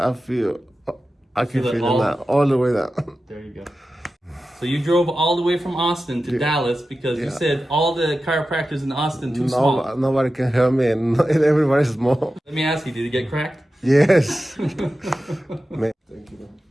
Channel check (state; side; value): normal; both; correlation 0.93